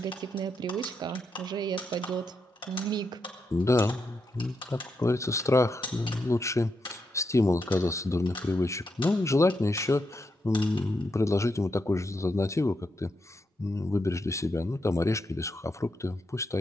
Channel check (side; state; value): both; normal; correlation 0.83